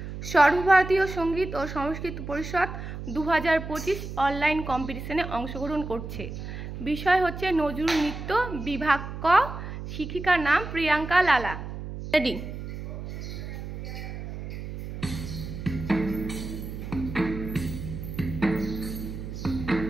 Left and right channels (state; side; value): noise; right; hum, 8 dB below the sound